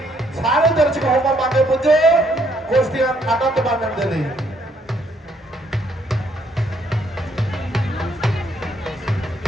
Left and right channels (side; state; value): both; normal; correlation 0.69